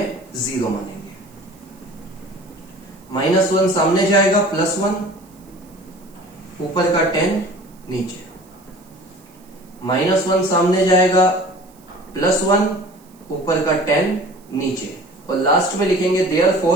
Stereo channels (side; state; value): right; noise; hiss, 29 dB below the sound